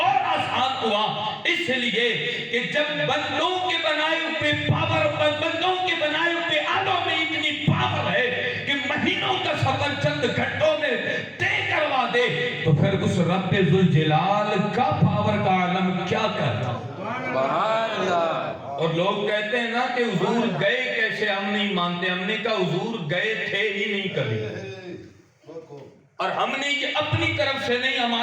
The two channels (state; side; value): identical; both; correlation 1.00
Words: آسان ہوا، اس لیے کہ جب بندوں کے بنائے ہوئے پاور، بندوں کے بنائے ہوئے آلوں میں اتنی پاور ہے کہ مہینوں کا سفر چند گھنٹوں میں طے کروا دے، تو پھر اس رب ذوالجلال کا پاور کا عالم کیا کرتا۔ سبحان اللہ۔ اور لوگ کہتے ہیں نا کہ حضور گئے کیسے، ہم نہیں مانتے۔ ہم نے کہا حضور گئے تھے ہی نہیں کبھی، اور ہم نے یہ اپنی طرف سے نہیں،